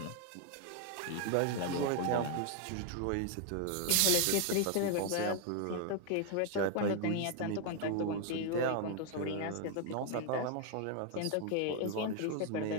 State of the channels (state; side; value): different; both; correlation 0.00